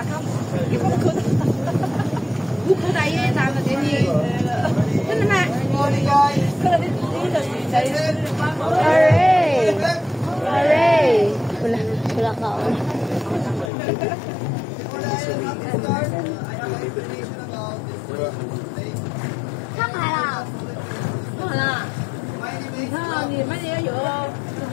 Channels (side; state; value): right; drops out; at 13.7 s